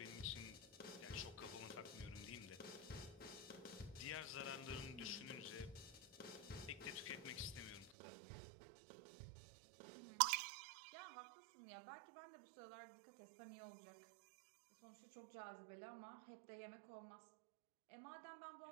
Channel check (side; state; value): left; drops out; at 8.0 s